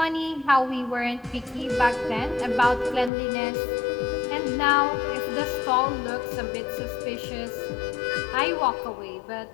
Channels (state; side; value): drops out; right; at 3.1 s